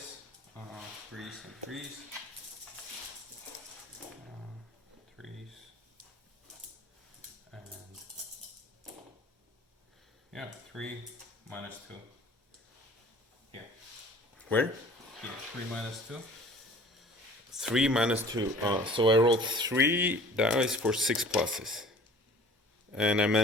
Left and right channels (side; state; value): both; normal; correlation 0.48